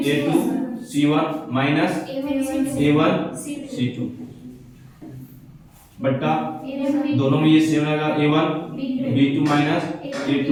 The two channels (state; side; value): identical; both; correlation 1.00